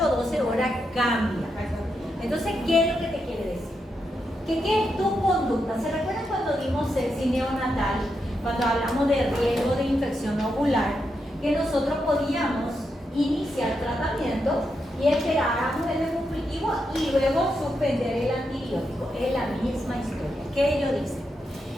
o 12 horas cambia. Entonces, ¿qué es lo que te quiere decir? Que ¿qué es tu conducta? ¿Se recuerdan cuando dimos sexy neonatal? Cuando hablamos de riesgo de infección ovular, que nosotros podíamos iniciar tratamiento y esperáramos el cultivo y luego suspender el antibiótico. Es la misma historia. ¿Qué ellos dicen?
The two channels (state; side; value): normal; both; correlation 0.84